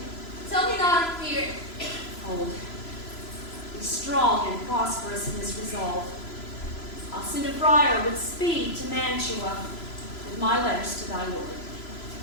Tell me not of fear. Hold. Be strong and prosperous in this resolve. I'll send a friar with speed to Mantua with my letters to thy lord.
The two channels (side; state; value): right; late; 3.0 ms